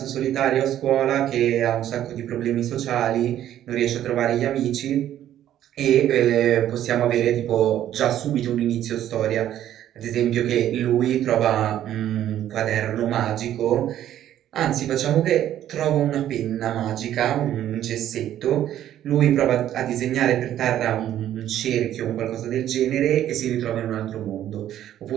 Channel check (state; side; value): quieter; left; 11.7 dB